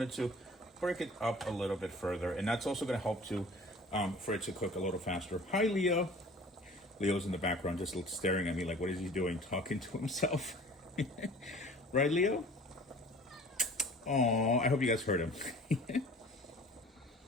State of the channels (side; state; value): both; normal; correlation 0.46